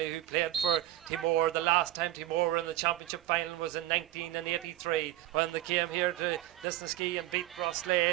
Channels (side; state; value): left; quieter; 14.8 dB